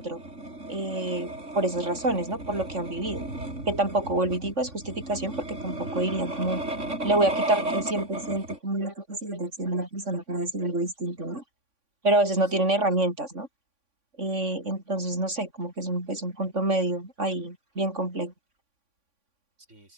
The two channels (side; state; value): left; late; 3.5 ms